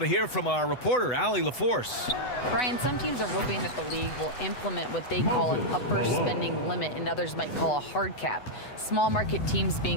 hear from our reporter, Allie LaForce. Brian, some teams are hoping that the league will implement what they call an upper spending limit and others might call a hard cap. Small market teams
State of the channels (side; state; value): right; late; 8.0 ms